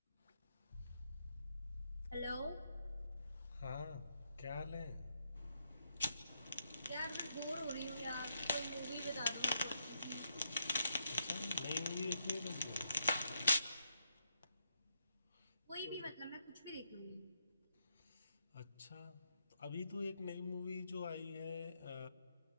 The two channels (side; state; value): both; inverted; correlation -0.78